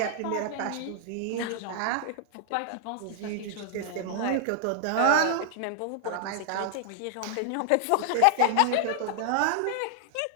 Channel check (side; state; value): both; different; correlation -0.01